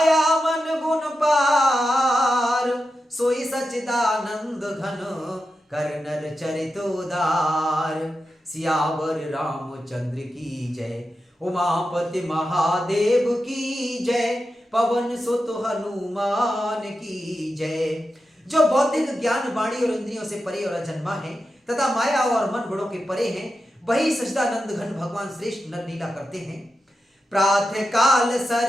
मन गुण पार। सोई सच्चिदानंद घन, कर नर चरित उदार। सियावर रामचंद्र की जय, उमापति महादेव की जय। पवन सुत हनुमान की जय। जो बौद्धिक ज्ञान वाणी और इंद्रियों से परे और अजन्मा है तथा माया और मन गुणों के परे हैं, वही सच्चिदानंद घन भगवान श्रेष्ठ नर लीला करते हैं। प्रातः काल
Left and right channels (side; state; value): both; normal; correlation 0.90